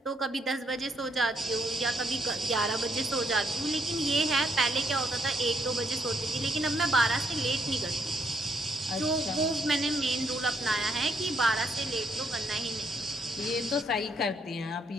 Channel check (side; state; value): both; normal; correlation 0.74